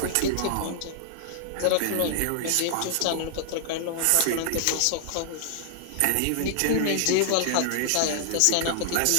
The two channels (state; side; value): different; both; correlation -0.01